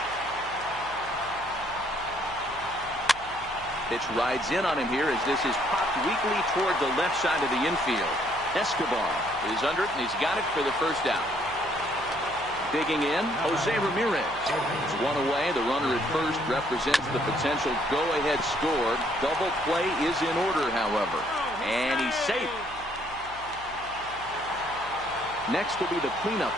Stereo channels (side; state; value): right; noise; hum, 19 dB below the sound